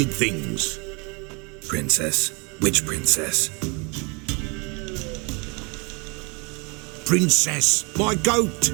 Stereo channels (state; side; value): quieter; left; 30.8 dB